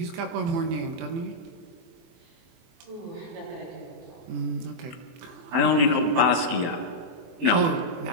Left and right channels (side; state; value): left; late; 24 ms